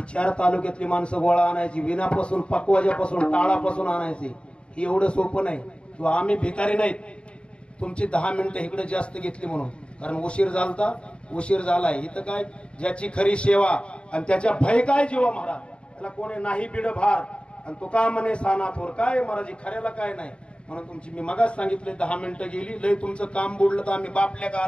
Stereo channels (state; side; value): late; right; 0.056 ms